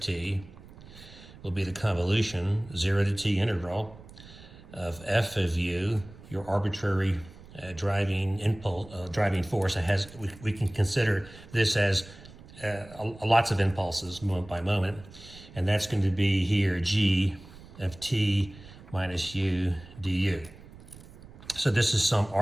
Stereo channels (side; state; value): right; noise; rumble, 19 dB below the sound